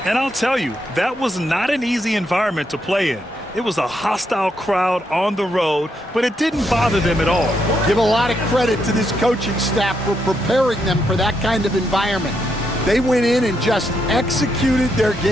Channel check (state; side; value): normal; both; correlation 0.79